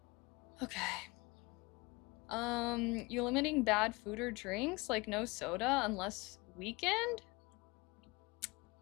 okay. You limiting bad food or drinks, like no soda unless weekend?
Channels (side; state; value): right; quieter; 25.1 dB